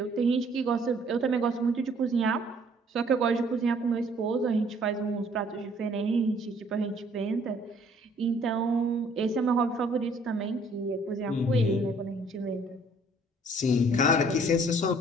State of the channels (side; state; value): both; normal; correlation 0.59